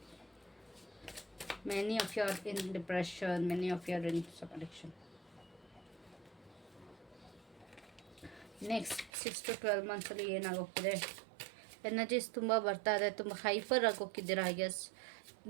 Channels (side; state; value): left; drops out; at 9.1 s